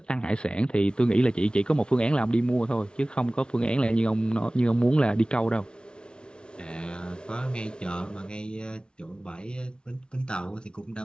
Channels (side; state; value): right; late; 0.055 ms